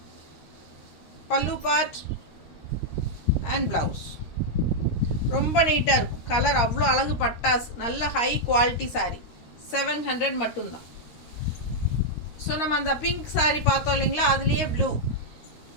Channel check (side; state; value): right; late; 13 ms